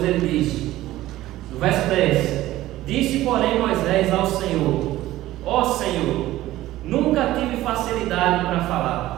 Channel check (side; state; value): left; quieter; 15.6 dB